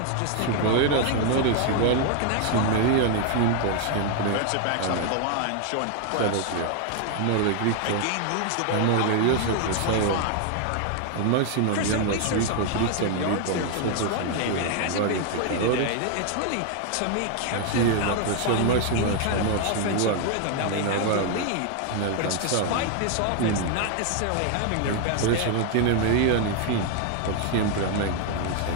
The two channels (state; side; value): different; both; correlation 0.00